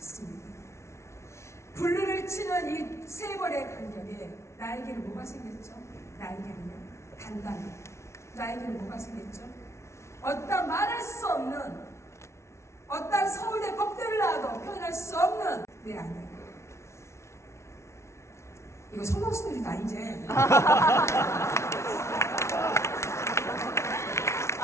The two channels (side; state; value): right; late; 0.13 ms